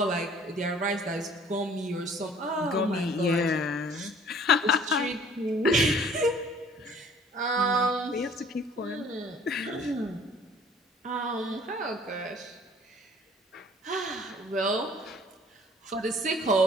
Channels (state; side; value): normal; both; correlation 0.54